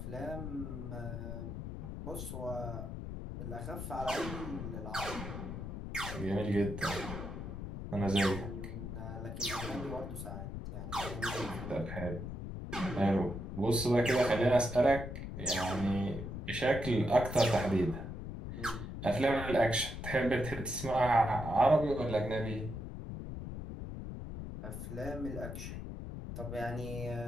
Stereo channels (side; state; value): left; noise; rumble, 7 dB below the sound